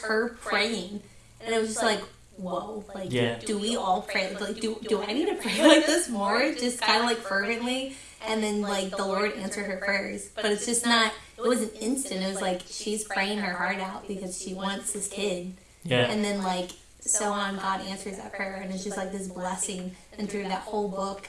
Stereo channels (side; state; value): both; identical; correlation 1.00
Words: her praying, and it was just like, whoa. Like, do we all pray? Like, do I need to pray like this more? Just kind of like fervently, and then like the Lord answered her prayers. But it's just not. It wasn't instant. It was like she's praying her heart out because she wants this kid. Yeah. And then like so on, God answers that prayer, and it's just like this blessing. And through that whole book